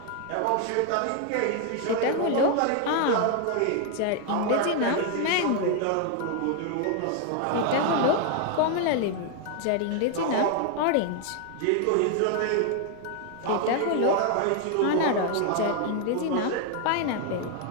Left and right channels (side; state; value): both; different; correlation 0.00